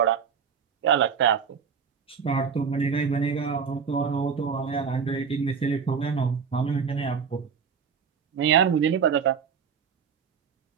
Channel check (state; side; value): quieter; left; 6.5 dB